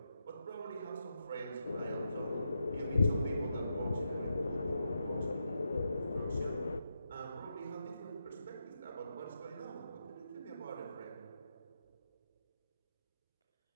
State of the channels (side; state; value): both; inverted; correlation -0.85